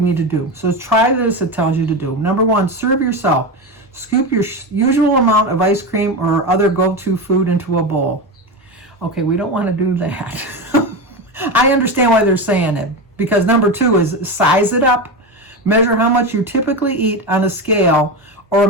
to do. So try this, it tells you to do. Number 1, serve yourself. Scoop your usual amount of ice cream or other go-to food into a bowl. Okay, we don't want to do that. I understand why they're saying it, because number 2 is size it up. Measure how much you typically eat on a scale or a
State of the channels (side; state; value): both; normal; correlation 0.19